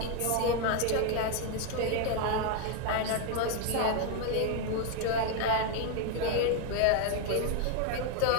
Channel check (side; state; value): both; different; correlation 0.01